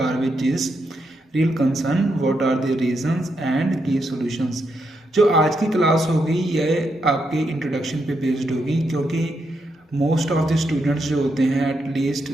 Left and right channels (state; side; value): normal; both; correlation 0.81